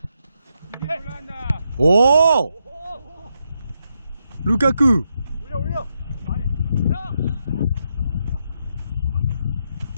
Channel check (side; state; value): both; inverted; correlation -0.82